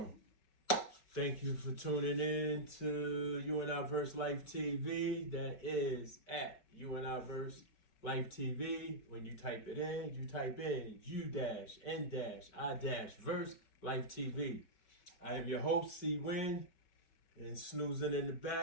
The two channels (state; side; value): late; right; 5.3 ms